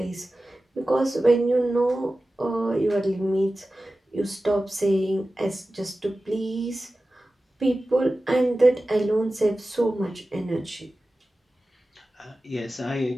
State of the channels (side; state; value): both; normal; correlation 0.95